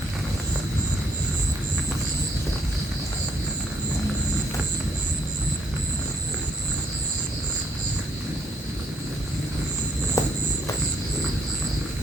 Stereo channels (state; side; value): normal; both; correlation 0.71